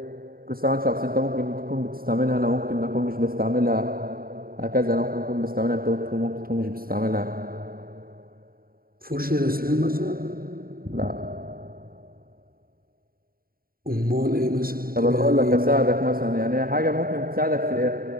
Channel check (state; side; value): late; left; 0.43 ms